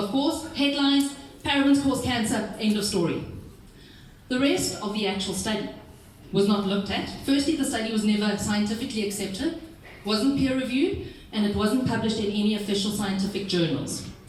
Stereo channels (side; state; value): both; identical; correlation 1.00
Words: of course, headlines, parabens cause cancer, end of story. The rest of the actual study was not looked at. Firstly, the study was never scientifically accepted, wasn't peer-reviewed, and it wasn't published in any official scientific journals.